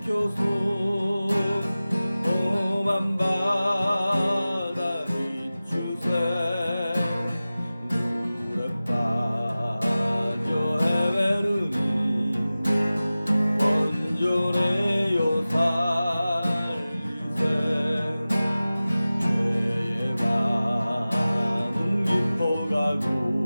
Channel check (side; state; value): both; inverted; correlation -0.96